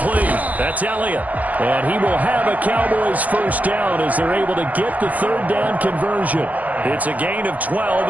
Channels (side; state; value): left; late; 0.078 ms